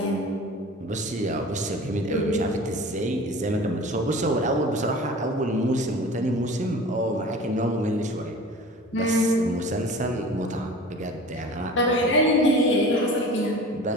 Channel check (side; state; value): both; normal; correlation 0.40